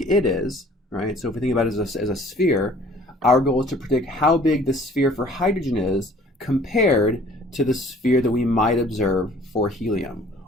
it is, right? So if we think about it as a sphere, our goal is to predict how big the sphere for hydrogen is compared to the sphere that we might observe for helium.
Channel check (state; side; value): normal; both; correlation 0.53